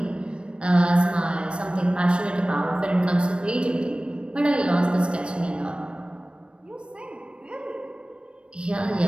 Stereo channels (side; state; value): left; late; 0.057 ms